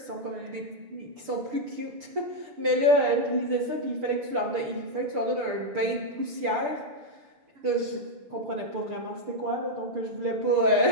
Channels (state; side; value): late; left; 6.7 ms